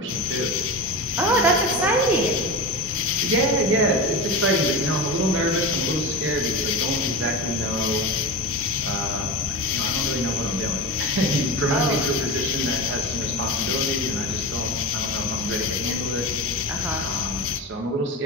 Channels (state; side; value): normal; both; correlation 0.25